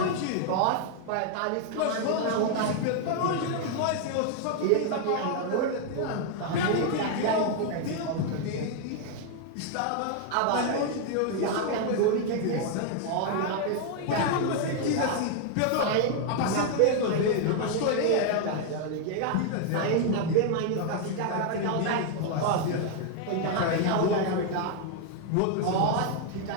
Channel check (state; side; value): different; both; correlation 0.00